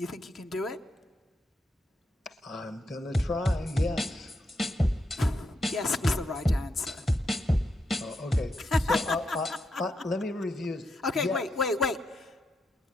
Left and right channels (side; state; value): both; normal; correlation 0.83